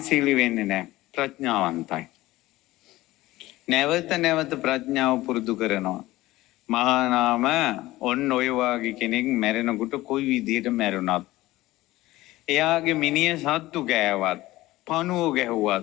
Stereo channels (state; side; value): quieter; right; 17.7 dB